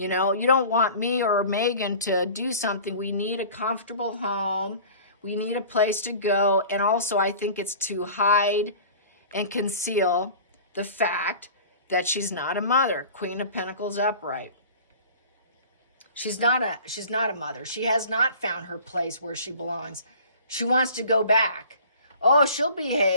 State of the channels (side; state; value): both; inverted; correlation -0.43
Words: know, you don't want me or Megan to do something. We need a comfortable home. We need a place to go. And also, I think it's to hide and conceal the fact that she's not a mother. Queen of Pentacles upright. She's not a mother. She has not found her place where she belongs. She wants to go back. Oh, she'll